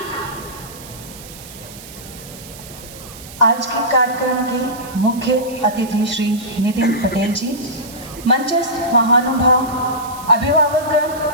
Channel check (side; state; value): right; noise; hiss, 16 dB below the sound